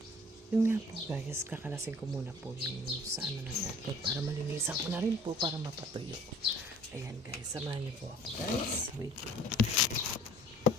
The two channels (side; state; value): both; normal; correlation 0.49